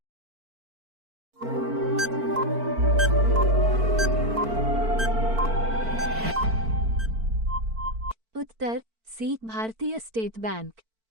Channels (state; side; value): late; left; 4.5 ms